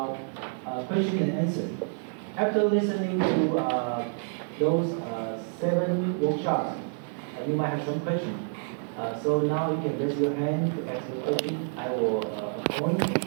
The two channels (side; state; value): left; silent; 59 dB below the other